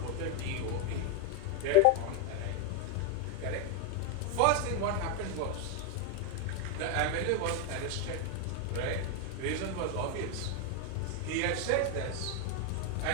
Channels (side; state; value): both; different; correlation 0.01